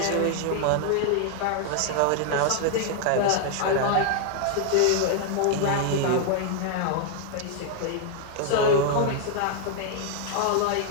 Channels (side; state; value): both; different; correlation 0.00